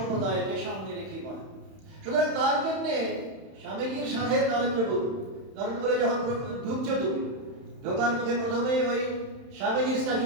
সামনে রেখেই বলা। সুতরাং তার জন্যে স্বামীজির সাথে নরেন্দ্রপুরে যখন ঢুকছো তুমি, ঢোকার মুখে প্রথমেই ওই স্বামীজির স্ট্যাচু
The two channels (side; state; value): left; late; 31 ms